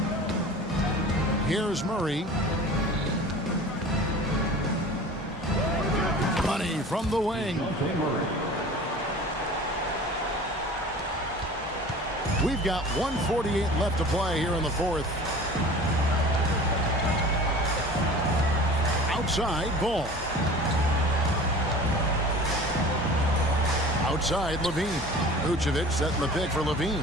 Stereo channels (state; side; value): normal; both; correlation 0.41